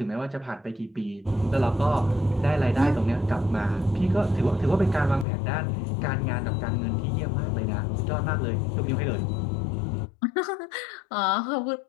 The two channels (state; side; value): drops out; right; at 5.2 s